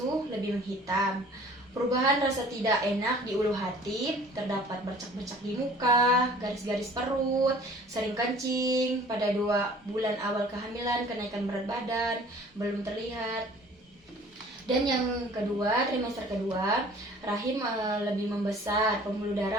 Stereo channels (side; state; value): both; normal; correlation 0.50